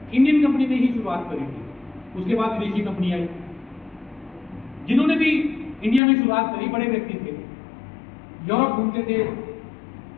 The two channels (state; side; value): drops out; right; at 6.0 s